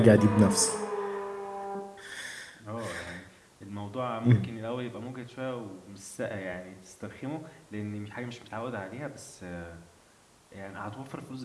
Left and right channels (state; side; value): identical; both; correlation 1.00